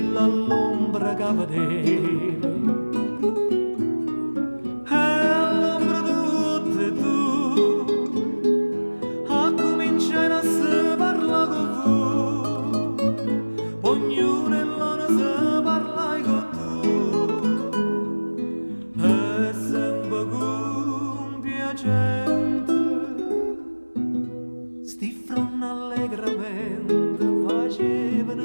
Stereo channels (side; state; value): both; inverted; correlation -1.00